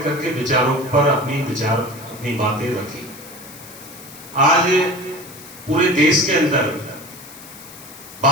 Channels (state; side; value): noise; left; hiss, 17 dB below the sound